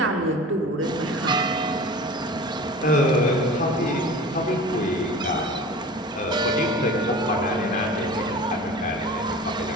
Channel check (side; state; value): both; normal; correlation 0.38